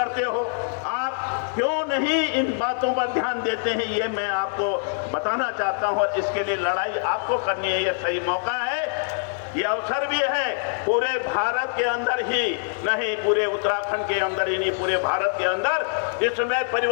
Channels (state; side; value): silent; right; digital silence